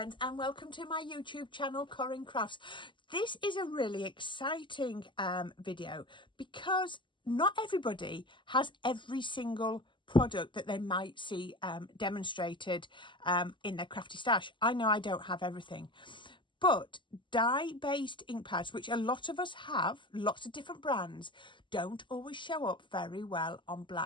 and welcome to my YouTube channel Corrine Crafts. This is a really exciting video because not everybody has every single product that they might see demonstrated in their crafty stash. I know I don't have everything. But dye-based ink pads, which a lot of us have, lots of different brands, don't always show up very well on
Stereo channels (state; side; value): late; right; 0.24 ms